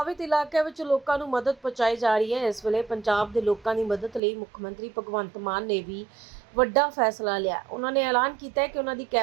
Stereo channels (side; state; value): left; drops out; at 4.2 s